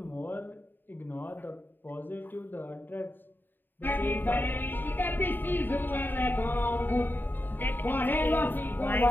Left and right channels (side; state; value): right; late; 0.093 ms